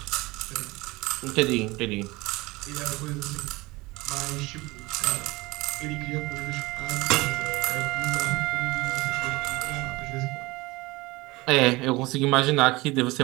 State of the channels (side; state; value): left; quieter; 22.0 dB